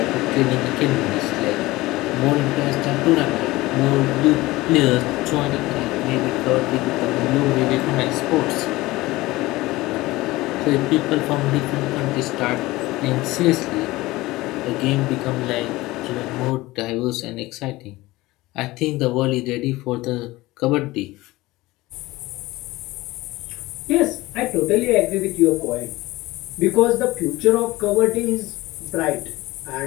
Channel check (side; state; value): right; quieter; 19.4 dB